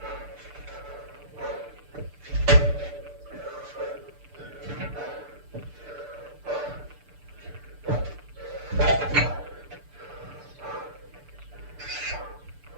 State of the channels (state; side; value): late; left; 6.8 ms